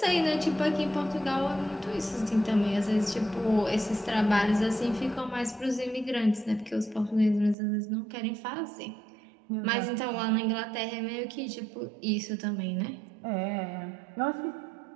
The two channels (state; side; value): drops out; left; at 7.6 s